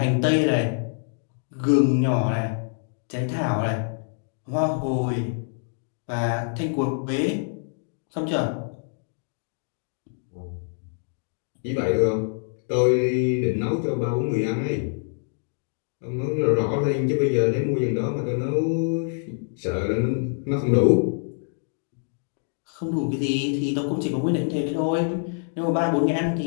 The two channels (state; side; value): silent; right; digital silence